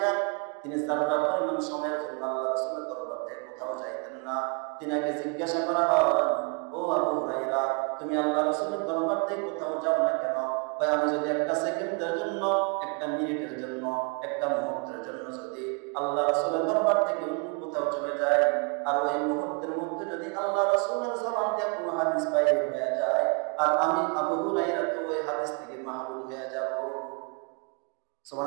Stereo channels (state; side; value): quieter; left; 34.1 dB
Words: তিনি যারা পরিমাণ সময়ের জন্য আল্লাহ রাসূলের দরবার থেকে কোথাও যাইতেন না। তিনাকে জিজ্ঞাসা করা হয়, ও আবু হুরায়রা, তুমি আল্লাহ রাসূলের দরবার থেকে কোথাও যাও না কেন? ভাই, আমি যদি একটা সেকেন্ডের জন্য, একটা মিনিটের জন্য, একটা মুহূর্তের জন্য যদি আল্লাহ রাসূলের দরবার থেকে অন্য কোথাও চলে যাই, আর ওই মুহূর্তের মধ্যে যদি আল্লাহ রাসূলের জবান দিয়ে কোনো হাদিস বাইরে হয়ে যায়, আর আমি আবু হুরায়রা তো ওই হাদিস থেকে মাহরুম হয়ে যাব।